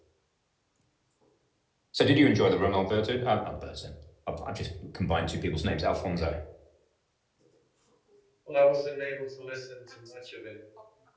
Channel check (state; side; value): identical; both; correlation 1.00